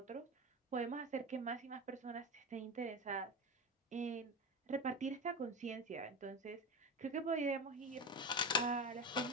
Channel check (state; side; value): normal; both; correlation 0.23